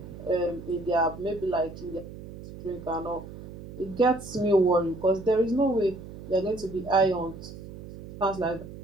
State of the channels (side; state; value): right; noise; hum, 14 dB below the sound